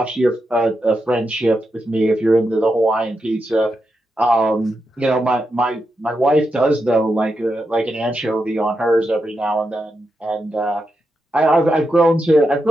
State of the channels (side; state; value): both; normal; correlation 0.86